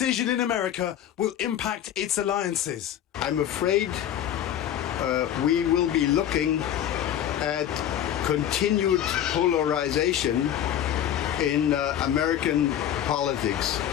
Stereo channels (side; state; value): right; quieter; 10.6 dB